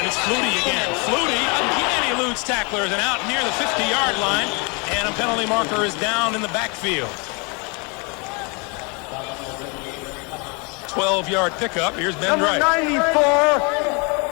it's Flutie again. Flutie again eludes tacklers and out near the 50-yard line, and a penalty marker is down in the backfield. 12-yard pickup. Here's Ben Number Wright. 94,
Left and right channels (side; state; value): right; quieter; 31.9 dB